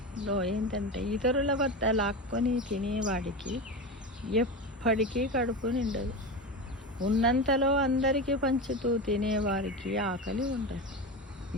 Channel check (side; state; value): both; normal; correlation 0.22